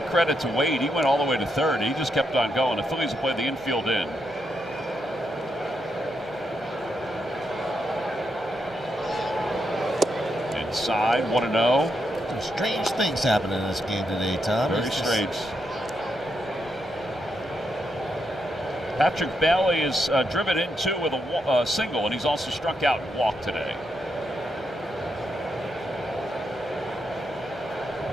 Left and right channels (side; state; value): right; noise; hum, 26 dB below the sound